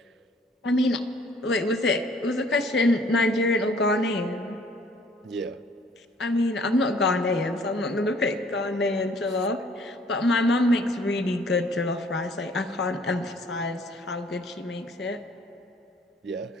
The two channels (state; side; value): normal; both; correlation 0.58